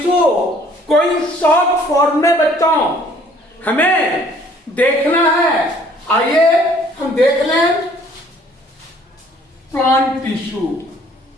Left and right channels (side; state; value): both; normal; correlation 0.58